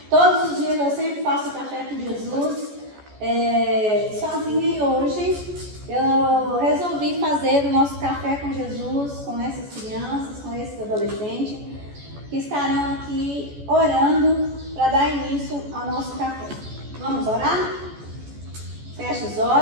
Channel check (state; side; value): late; left; 14 ms